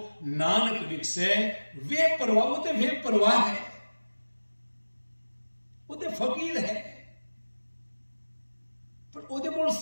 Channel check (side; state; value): both; inverted; correlation -1.00